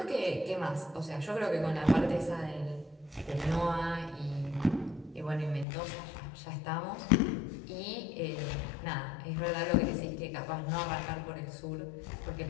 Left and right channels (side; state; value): right; drops out; at 5.7 s